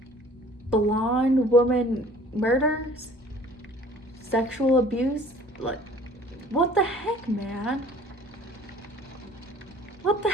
blonde woman murders, sexual abuse. Like, what the heck, man? What the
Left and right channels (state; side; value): normal; both; correlation 0.51